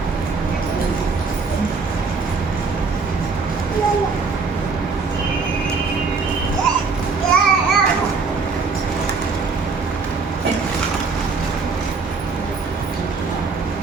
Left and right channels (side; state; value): left; quieter; 4.6 dB